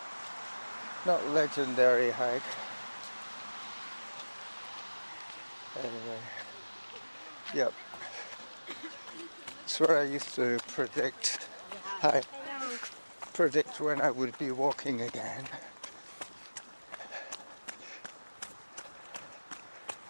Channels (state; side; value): inverted; both; correlation -1.00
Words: not legendary hike. Anyway, yep. It's where I used to predict when I would be walking again.